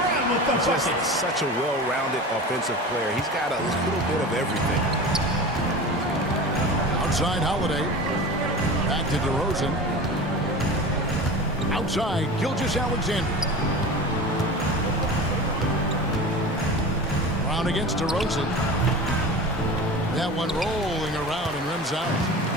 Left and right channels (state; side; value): normal; both; correlation 0.32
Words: Just such a well-rounded offensive player. He's got a little bit of everything. Outside Holiday. Back to DeRozan. Outside, Gilgeous-Alexander. Brown against DeRozan. That one rolling around and rims out.